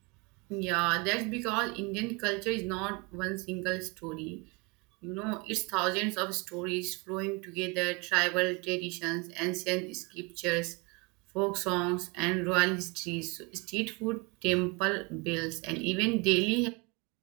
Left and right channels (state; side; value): quieter; left; 28.7 dB